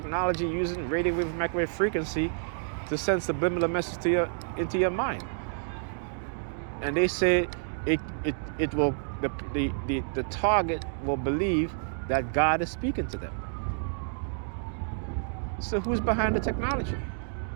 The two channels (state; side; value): silent; left; digital silence